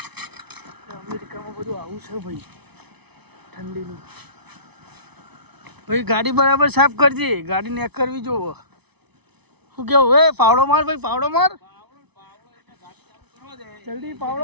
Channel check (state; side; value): late; left; 0.99 ms